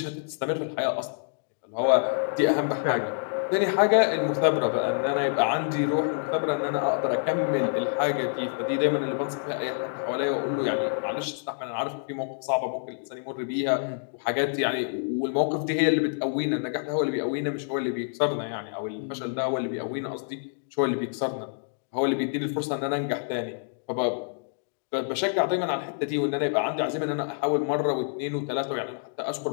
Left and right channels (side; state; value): right; silent; digital silence